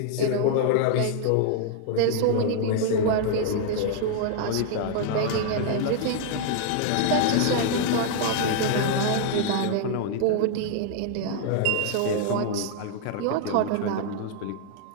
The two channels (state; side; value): different; both; correlation 0.00